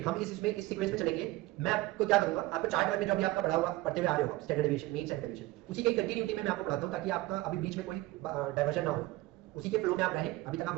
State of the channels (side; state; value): left; quieter; 18.9 dB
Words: हम इस सीक्वेंस में चलेंगे। मैं आपको क्या करूंगा, आपको चार्ट में जो अभी आपका पढ़ा हुआ पढ़ते हुए आ रहे हो standard deviation, mean, standard deviation, उसी की कंटिन्यूटी में मैं आपको पढ़ाता हूँ, ताकि आपका अभी बीच में कोई डाइवर्जन ना हो, उसी के फ्लो में आप रहें। अभी तक आप